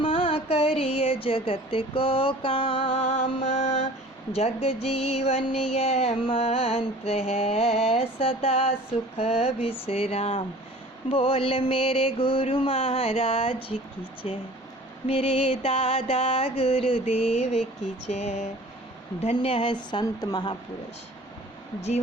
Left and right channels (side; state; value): both; normal; correlation 0.45